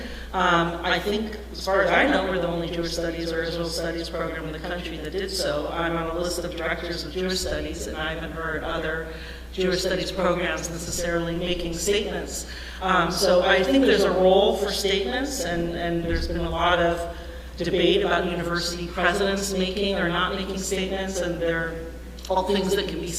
I think, as far as I know, we're the only Jewish Studies or Israel Studies program in the country that did so. I'm on a list of directors of Jewish Studies, and I haven't heard other Jewish Studies programs necessarily making statements. So I think there's a role for statements, and there's been a lot of debate about university presidents making or not making statements, and there are all things that can be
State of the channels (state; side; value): identical; both; correlation 1.00